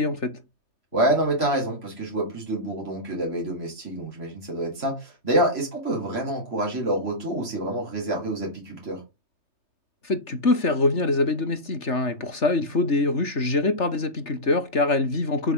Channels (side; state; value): right; late; 3.3 ms